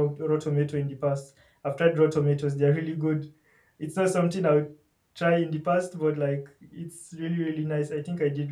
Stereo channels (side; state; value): both; identical; correlation 1.00